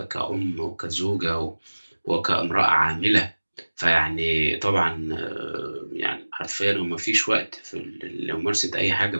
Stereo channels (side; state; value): both; inverted; correlation -1.00